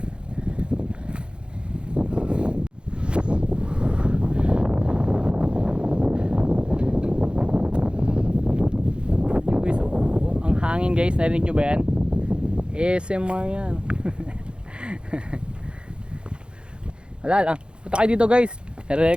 Hangin guys, narinig nyo ba yan? ASMR yan. Wala lang, punta kayo dito guys,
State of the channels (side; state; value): left; late; 0.053 ms